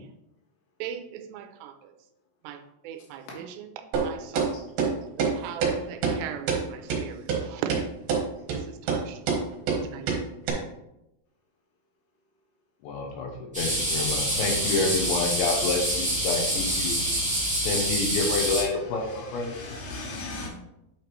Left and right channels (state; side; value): normal; both; correlation -0.02